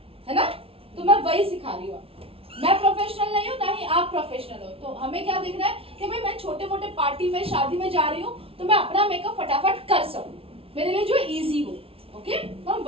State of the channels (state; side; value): late; left; 0.27 ms